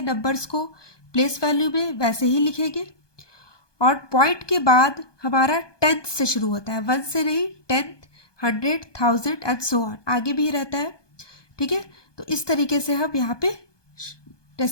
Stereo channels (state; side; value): late; right; 1.2 ms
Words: नंबर्स को प्लेस वैल्यू में, वैसे ही लिखेंगे। और पॉइंट के बाद हमारा टेंथ से शुरू होता है, 1 से नहीं, 10th, 100, 1000 एंड सो ऑन, आगे भी रहता है। ठीक है, तो इस तरीके से हम यहाँ पे